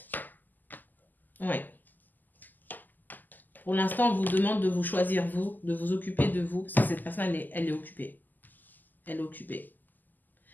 Ouais. Pour l'instant, on vous demande de vous choisir vous, de vous occuper de vous, parce que cette personne, elle est occupée. Elle est occupée.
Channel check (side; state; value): right; late; 0.086 ms